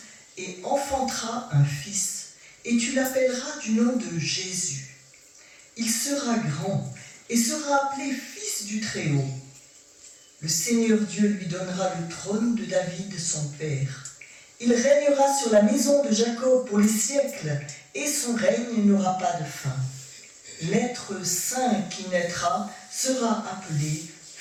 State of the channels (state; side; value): identical; both; correlation 1.00